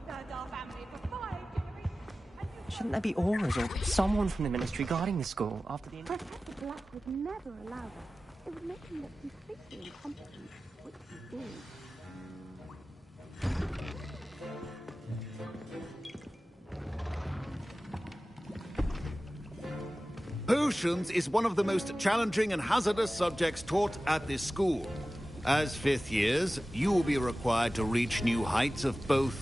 served our family for 5 generations. Shouldn't there be auras or someone from the ministry guarding the school after the... Professor Black would never allow that. It would make him look completely incompetent, which he is. Potions is one of the most challenging and hazardous subjects taught at this school. As fifth years, you will be required to reach new heights of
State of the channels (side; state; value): both; normal; correlation 0.96